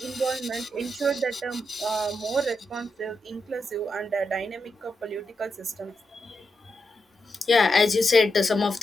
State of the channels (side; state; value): both; normal; correlation 0.85